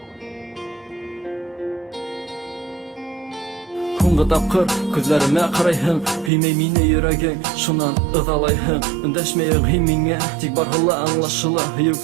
Һуңғы тапҡыр күҙләремә ҡарайһың, һөймәй мине йөрәгең, шунан ыҙалайһың. Өндәшмәйһең һин миңә, тик барһыла аңлашыла. Һөйөү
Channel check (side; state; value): left; drops out; at 6.3 s